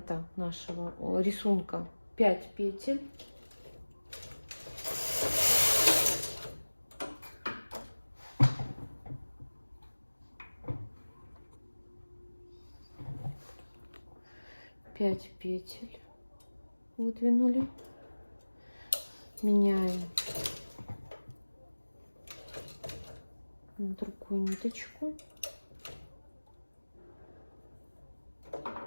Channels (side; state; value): both; inverted; correlation -1.00